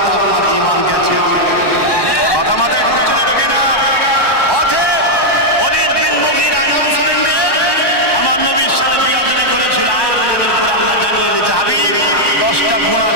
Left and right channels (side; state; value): right; late; 1.1 ms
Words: আপনার ঈমান গেছে। কথা মাথায় ঢুকছে না? ঢোকে না? অতএব ওলীদ বিন মুগীরা নাম শুনেন রে, আমার নবীর সাথে বিয়াদবি করেছিল। আয়াত নাযিল করে আল্লাহ জানিয়ে দিয়েছে, হাবিব 10টা গুণ